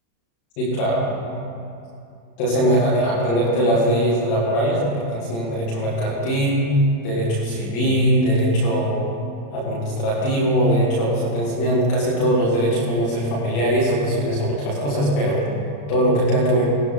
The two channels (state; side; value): late; right; 35 ms